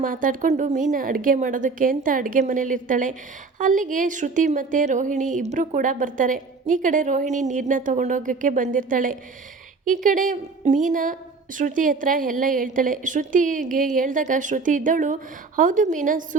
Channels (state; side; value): quieter; left; 4.3 dB